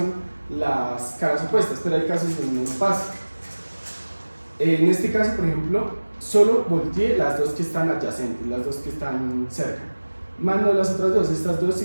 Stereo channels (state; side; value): inverted; both; correlation -1.00